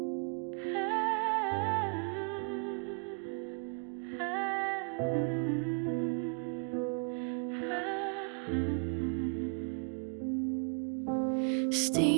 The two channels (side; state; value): left; quieter; 39.7 dB